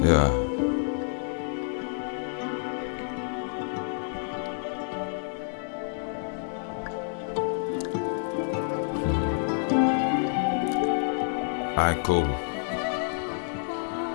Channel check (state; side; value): silent; right; 55 dB below the other